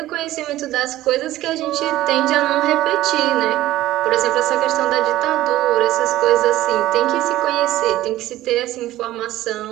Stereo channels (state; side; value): quieter; left; 15.2 dB